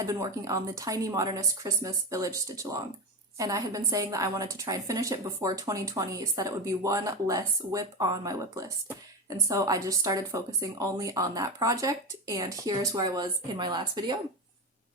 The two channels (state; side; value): normal; both; correlation 0.18